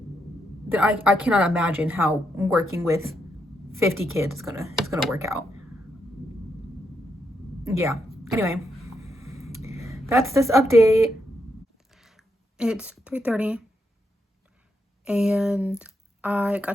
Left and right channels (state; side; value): normal; both; correlation 0.81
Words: then I cannot imagine how working with 50 kids is gonna work out. Yeah. Anyway, that's this update. It's 3:30, and I